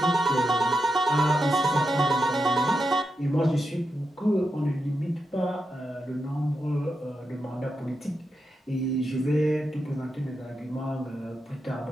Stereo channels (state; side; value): normal; both; correlation 0.87